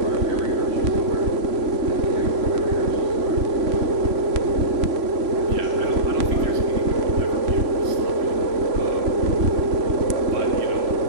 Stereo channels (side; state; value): left; late; 3.0 ms